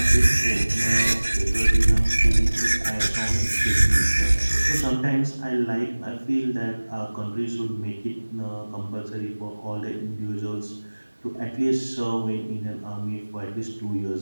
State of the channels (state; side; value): inverted; both; correlation -1.00